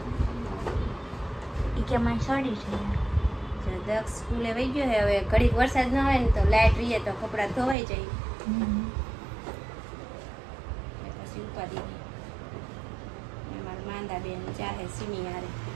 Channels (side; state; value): left; drops out; at 7.8 s